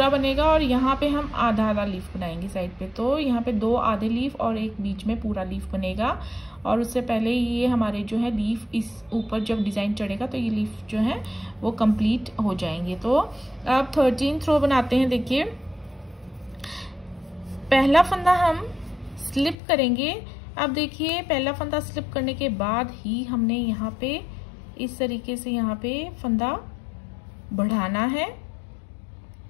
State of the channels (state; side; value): drops out; right; at 19.6 s